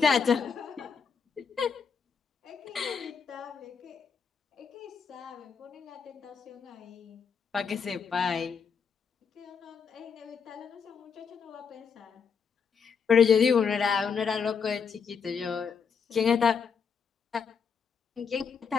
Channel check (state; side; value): quieter; right; 6.2 dB